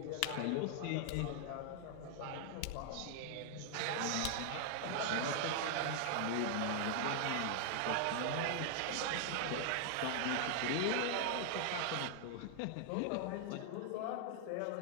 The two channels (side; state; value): both; different; correlation 0.00